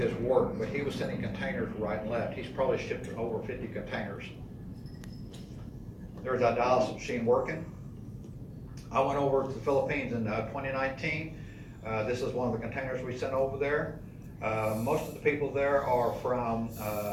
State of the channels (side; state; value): both; identical; correlation 1.00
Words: work, but he was sending containers right and left. He's probably shipped over 50 containers. There's that dialysis machine working. I went over to the Philippines in 2019. This is one of the containers we sent over there. Most of the people there are from